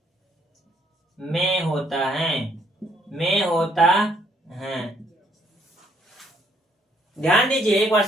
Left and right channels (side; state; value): both; normal; correlation 0.68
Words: में होता है। ध्यान दीजिए, एक बार